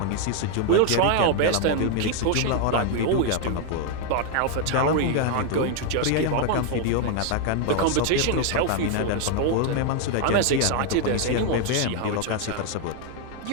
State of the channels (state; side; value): different; both; correlation 0.01